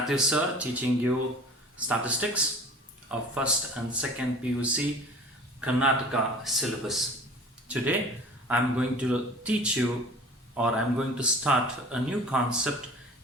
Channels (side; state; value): both; normal; correlation 0.43